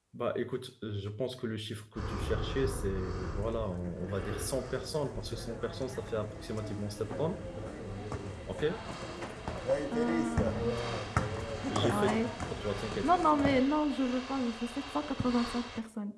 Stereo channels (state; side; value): identical; both; correlation 1.00